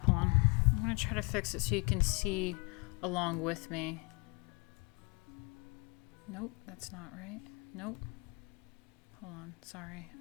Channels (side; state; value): right; quieter; 29.5 dB